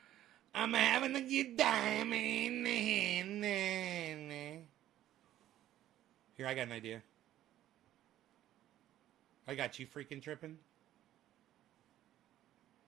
I'm having a good time. Here, I got an idea. I got you freaking tripping.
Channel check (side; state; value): left; quieter; 12.9 dB